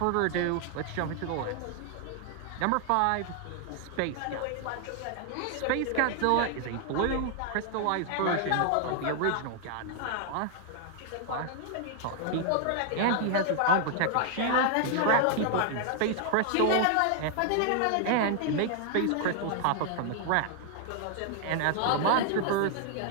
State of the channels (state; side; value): different; both; correlation 0.00